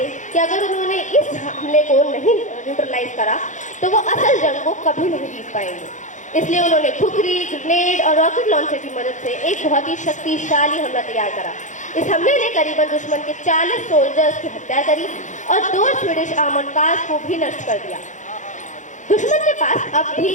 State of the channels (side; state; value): right; late; 0.36 ms